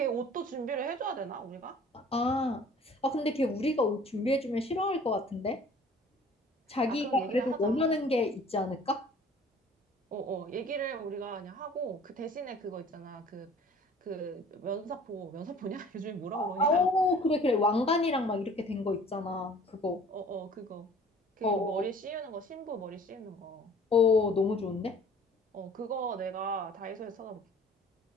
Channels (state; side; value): normal; both; correlation 0.51